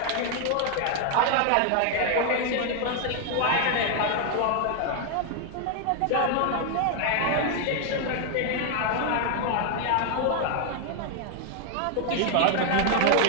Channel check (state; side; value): different; both; correlation 0.00